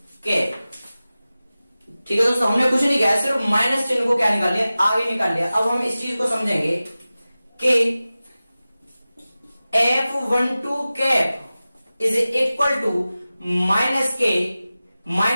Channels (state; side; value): inverted; both; correlation -0.96